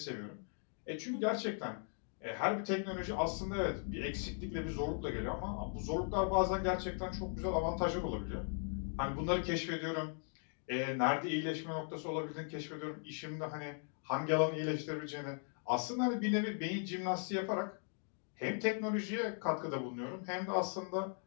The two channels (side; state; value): right; silent; 52 dB below the other